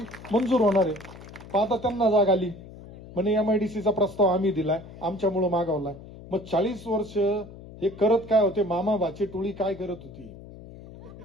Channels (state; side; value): noise; left; hum, 16 dB below the sound